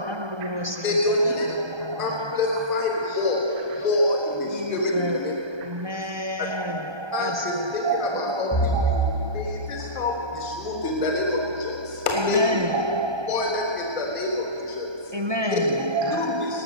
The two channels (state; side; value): late; left; 1.2 ms